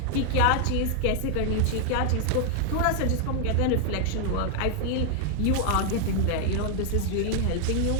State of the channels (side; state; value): both; different; correlation 0.00